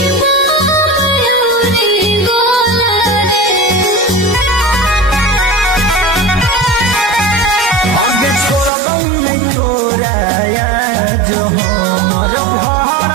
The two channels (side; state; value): left; drops out; at 8.7 s